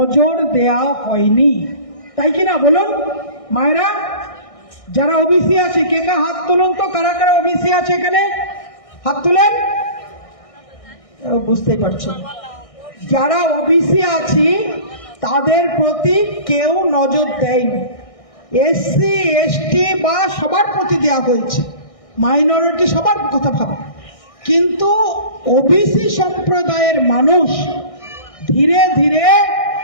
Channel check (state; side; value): late; right; 1.6 ms